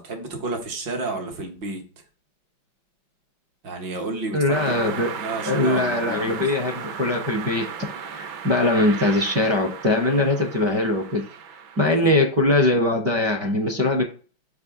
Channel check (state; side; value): late; left; 5.6 ms